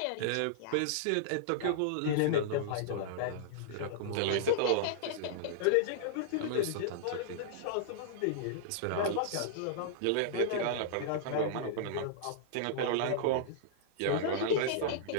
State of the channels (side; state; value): both; different; correlation -0.01